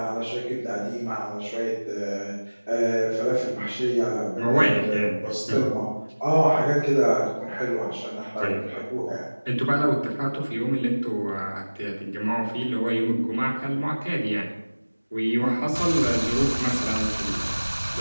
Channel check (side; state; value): both; inverted; correlation -1.00